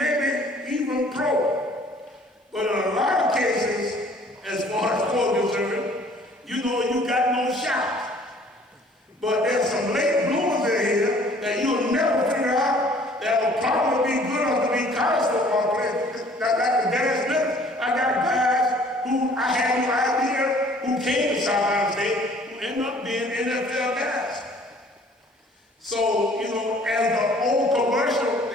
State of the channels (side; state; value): both; normal; correlation 0.55